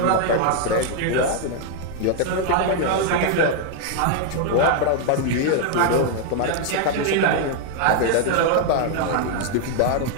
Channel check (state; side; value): different; both; correlation 0.00